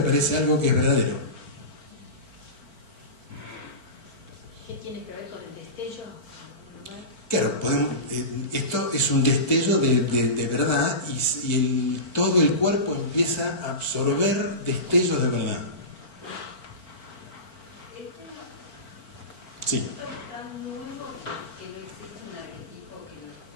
algo que es verdadero. ¿Qué tiene que ver con el destello? Claro, esto es un destello de verdad y todo el cuerpo empieza a absorber destellos de verdad. Sí. ¿Esto es tan nuevo que no existe un arquetipo porque es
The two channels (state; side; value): late; right; 4.4 ms